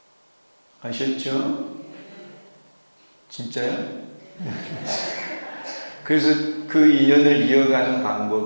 아셨죠? 진짜요? 그래서 그 인연을 이어가는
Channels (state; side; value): inverted; both; correlation -1.00